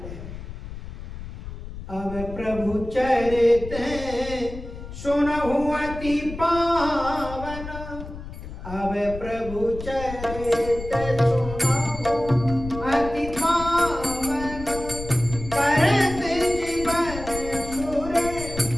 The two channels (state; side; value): noise; left; rumble, 11 dB below the sound